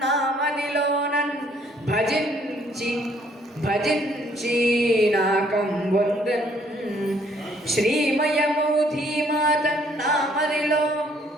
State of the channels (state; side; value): normal; both; correlation 0.65